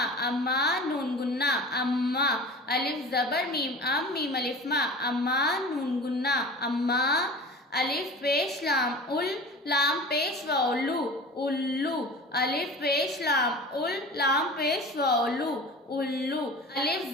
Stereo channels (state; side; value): normal; both; correlation 0.37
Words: अम्मा। नून गुन्ना, अम्मा। अलिफ जबर मीम अम, मीम अलिफ मा, अम्मा। नून गुन्ना, अम्मा। अलिफ पेश लाम उल, लाम पेश व उल्लू, उल्लू। अलिफ पेश लाम उल, लाम पेश व उल्लू, उल्लू। अलिफ